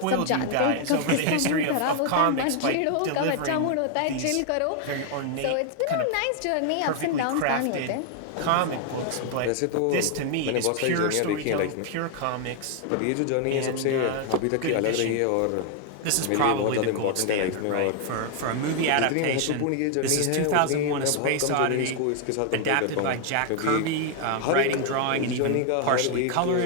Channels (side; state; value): both; different; correlation 0.00